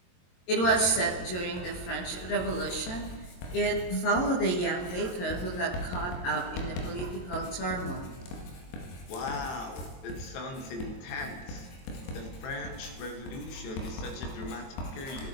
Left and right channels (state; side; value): late; right; 23 ms